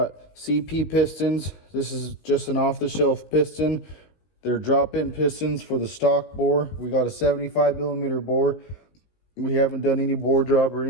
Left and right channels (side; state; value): right; late; 17 ms